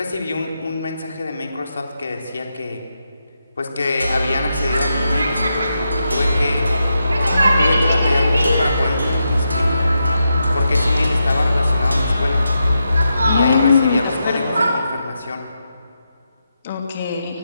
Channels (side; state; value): both; inverted; correlation -0.85